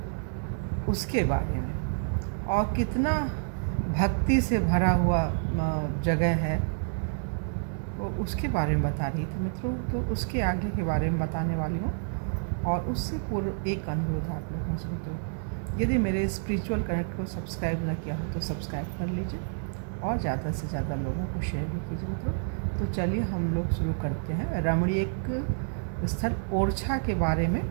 उसके बारे में, और कितना भक्ति से भरा हुआ जगह है वो उसके बारे में बता रही थी मित्रों। तो उसके आगे के बारे में बताने वाली हूँ, और उससे पूर्व एक अनुरोध आप लोगों से मित्रों, यदि मेरे स्पिरिचुअल कनेक्ट को सब्सक्राइब न किया हो तो सब्सक्राइब कर लीजिए और ज़्यादा से ज़्यादा लोगों को शेयर भी कीजिए मित्रों। तो चलिए हम लोग शुरू करते हैं रमणीक स्थल ओरछा के बारे में,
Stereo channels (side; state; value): left; silent; 58 dB below the other